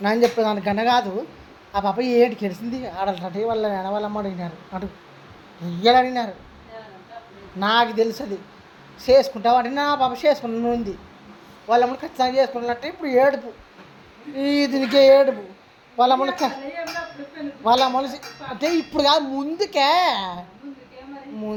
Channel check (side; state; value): both; identical; correlation 1.00